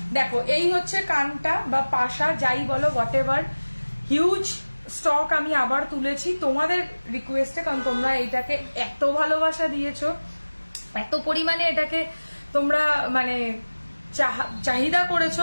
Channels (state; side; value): inverted; both; correlation -1.00